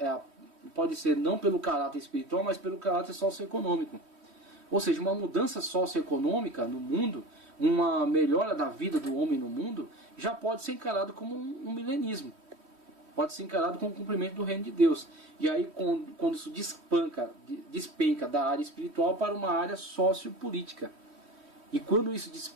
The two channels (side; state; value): left; late; 3.1 ms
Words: pode ser não pelo caráter espiritual, mas pelo caráter socioeconômico. Ou seja, uma mudança socioeconômica no mundo, uma melhora da vida do homem no mundo, já pode ser encarado como um milenismo. Pode ser encarado como um cumprimento do reino de Deus. E aí quando isso despenca da área espiritual para uma área sociopolítica. E quando isso